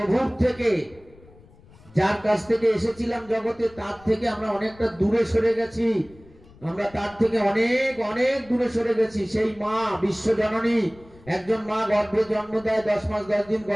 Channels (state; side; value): noise; left; rumble, 25 dB below the sound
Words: থেকে। যার কাছ থেকে এসেছিলাম জগতে তার থেকে আমরা অনেকটা দূরে সরে গেছি, আমরা তার থেকে অনেক অনেক দূরে সরে গেছি। সেই মা বিশ্বজননী, একজন মা গর্ভে জন্ম দেয়, 10 মাস 10 দিন